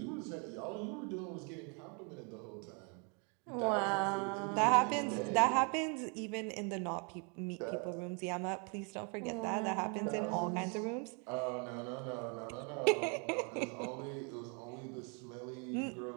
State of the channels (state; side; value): quieter; left; 36.0 dB